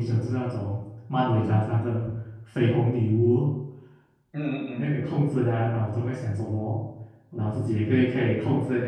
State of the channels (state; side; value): identical; both; correlation 1.00